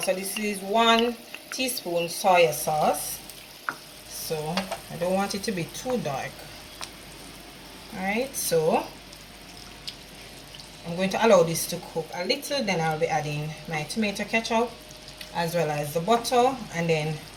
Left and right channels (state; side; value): identical; both; correlation 1.00